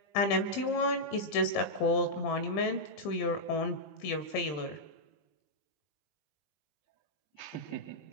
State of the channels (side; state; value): right; late; 20 ms